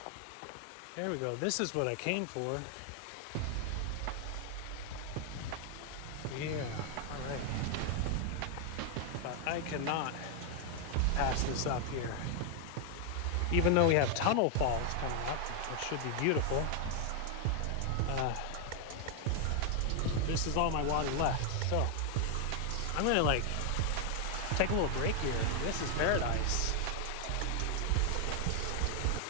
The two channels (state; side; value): different; both; correlation 0.00